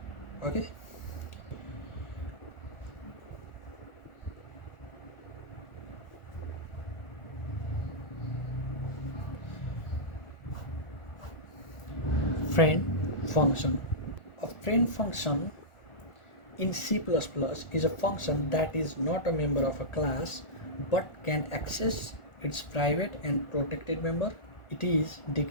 Okay. Friend function. A friend function in C++ is a function that is not a member of a class but can access its private and protected member. It is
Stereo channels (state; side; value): late; right; 1.4 ms